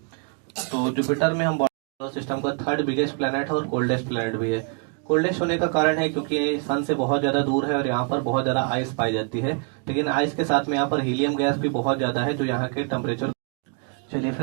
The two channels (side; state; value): left; quieter; 37.8 dB